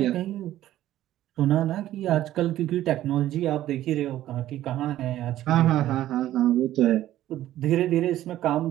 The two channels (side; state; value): left; quieter; 13.5 dB